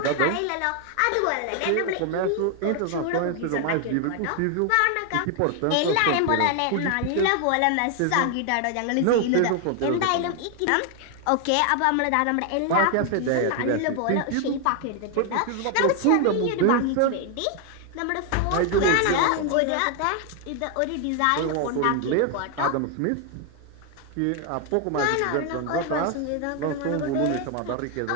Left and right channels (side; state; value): both; different; correlation 0.00